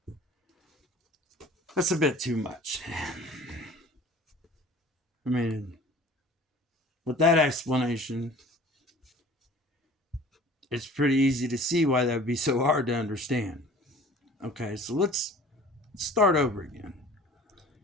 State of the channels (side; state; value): both; normal; correlation 0.46